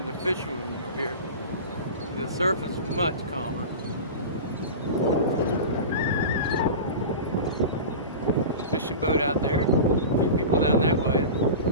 the fishermen were here. The surface is much calmer. Fishing boat out there. A few people down that way.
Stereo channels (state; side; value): inverted; both; correlation -0.30